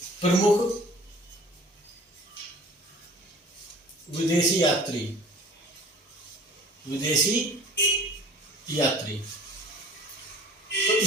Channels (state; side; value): normal; both; correlation 0.46